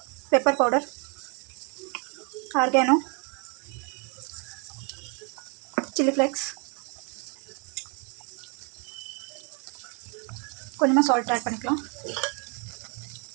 pepper powder, organo, chilli flakes, கொஞ்சமாக சால்ட் ஆட் பண்ணிக்கலாம்.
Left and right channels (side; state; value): left; quieter; 34.7 dB